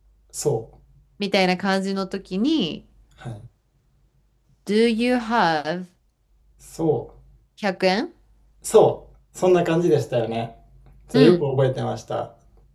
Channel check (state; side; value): identical; both; correlation 1.00